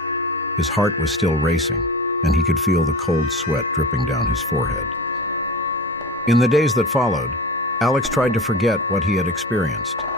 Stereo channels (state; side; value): normal; both; correlation 0.31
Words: His heart was still racing, and he could feel the cold sweat dripping down his forehead. In the days that followed, Alex tried to forget what he had experienced.